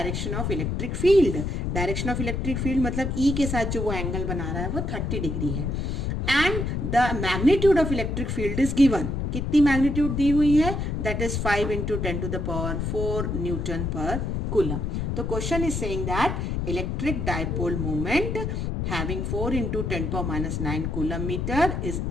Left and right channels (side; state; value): left; noise; rumble, 1 dB below the sound